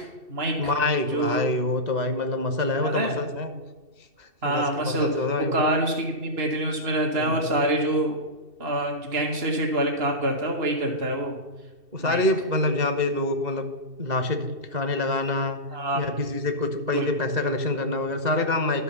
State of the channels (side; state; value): left; late; 2.7 ms